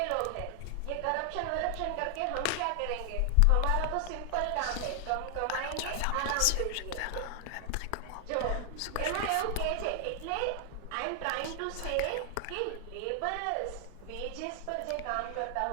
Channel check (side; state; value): both; different; correlation 0.00